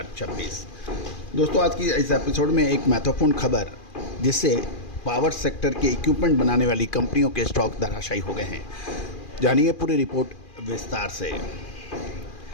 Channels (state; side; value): late; right; 2.4 ms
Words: दोस्तों आज की इस एपिसोड में एक महत्वपूर्ण खबर, जिससे पावर सेक्टर के इक्विपमेंट बनाने वाली कंपनियों के स्टॉक धराशायी हो गए हैं। जानिए पूरी रिपोर्ट विस्तार से।